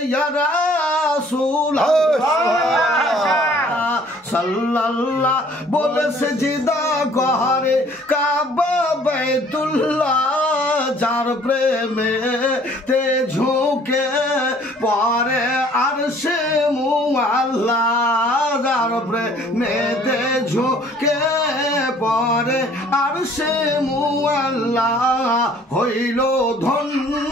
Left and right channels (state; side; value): normal; both; correlation 0.56